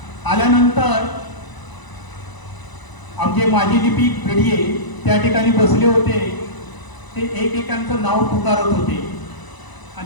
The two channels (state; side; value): late; right; 1.0 ms